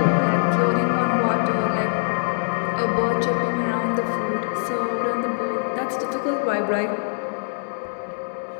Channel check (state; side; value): silent; right; digital silence